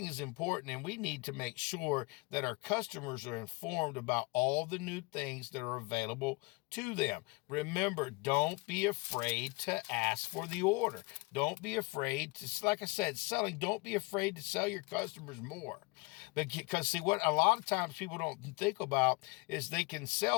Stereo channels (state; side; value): quieter; right; 26.3 dB